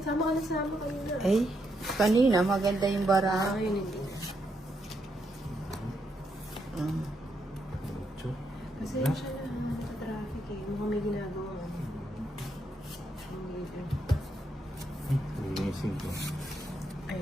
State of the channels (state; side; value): normal; both; correlation 0.79